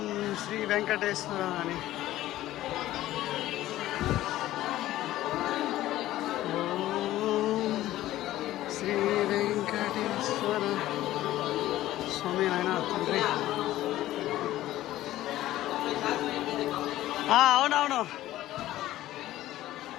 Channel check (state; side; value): quieter; right; 14.8 dB